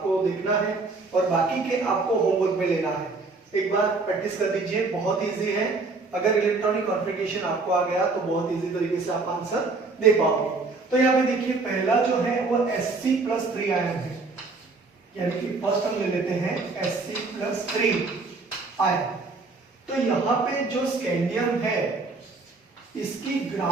देखना है और बाकी के आपको होमवर्क में लेना है। एक बार प्रैक्टिस कर दीजिए, बहुत इजी है। अगर इलेक्ट्रॉनिक कॉन्फ़िगरेशन आपको आ गया तो बहुत इजी तरीके से आप आंसर दे पाओगे। तो यहाँ पे देखिए पहला जो है वो Sc+3 आयन है, यानी कि फर्स्ट हम ले लेते हैं Sc+3 आयन। तो यहाँ पे जो स्कैंडियम है इसकी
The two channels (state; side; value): quieter; left; 3.8 dB